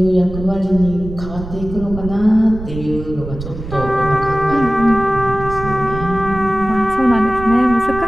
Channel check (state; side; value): noise; right; rumble, 10 dB below the sound